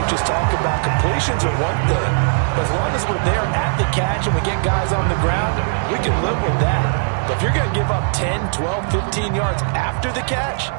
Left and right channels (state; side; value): silent; left; 57 dB below the other